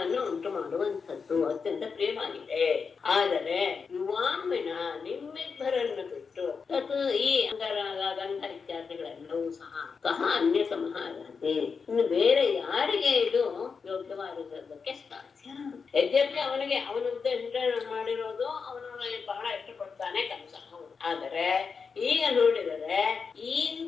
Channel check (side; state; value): right; quieter; 5.4 dB